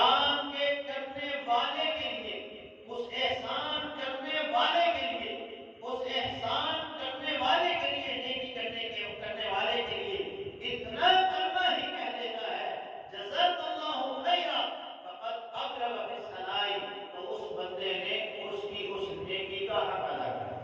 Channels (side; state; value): both; identical; correlation 1.00